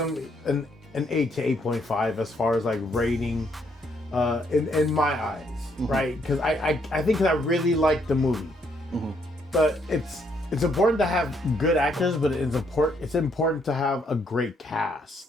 an 8 to 8.5 as far as like rating in my eyes, right? Because I think I really liked the movie. But it's important to have good actors, but it's important to have a great cast,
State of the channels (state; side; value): normal; both; correlation 0.72